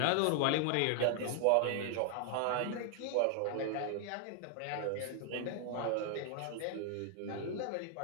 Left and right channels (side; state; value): both; different; correlation 0.00